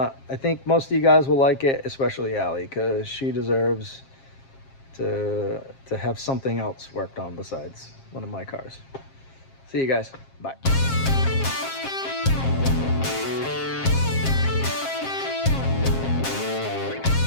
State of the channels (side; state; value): right; late; 7.5 ms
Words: think most of you guys will like it, especially Allie, because she deserves to have something else worked on besides one of my cars. See you guys. Bye.